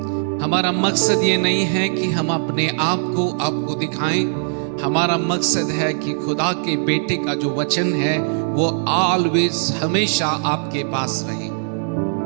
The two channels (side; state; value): left; silent; digital silence